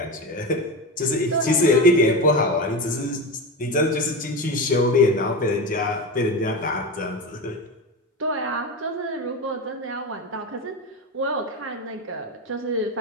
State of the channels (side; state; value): both; normal; correlation 0.20